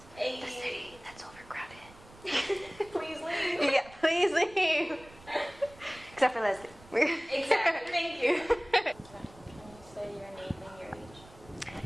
Hey. The city that's overcrowded. Please leave. Yeah, please leave. Except for Leslie. Exactly, thank you. Can you say your name and your age?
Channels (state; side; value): noise; right; rumble, 22 dB below the sound